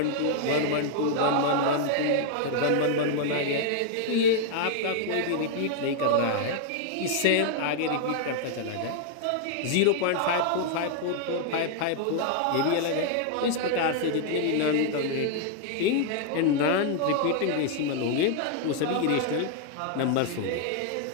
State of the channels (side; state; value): both; different; correlation 0.00